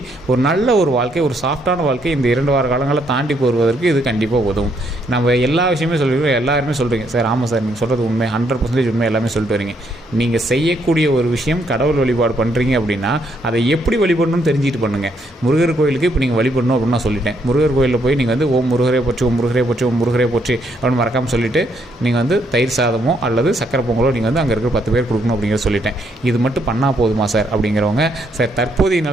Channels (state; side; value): normal; both; correlation 0.73